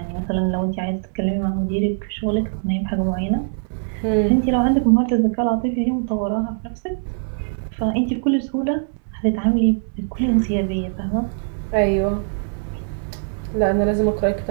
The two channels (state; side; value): silent; left; digital silence